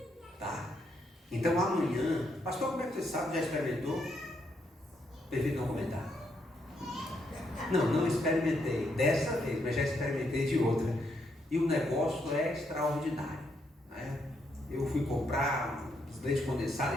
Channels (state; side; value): normal; both; correlation 0.77